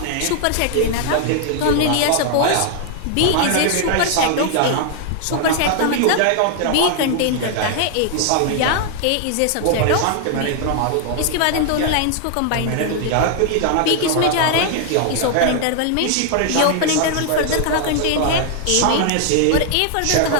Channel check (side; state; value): both; different; correlation 0.00